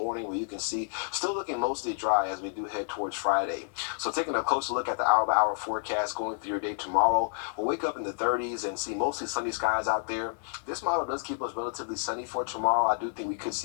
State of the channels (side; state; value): right; silent; digital silence